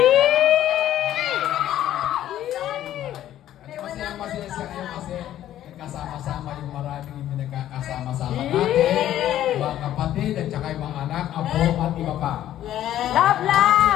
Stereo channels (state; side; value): quieter; right; 12.3 dB